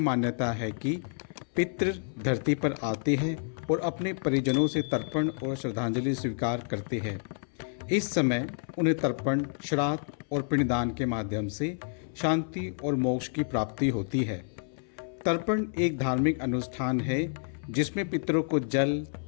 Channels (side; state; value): right; silent; 58 dB below the other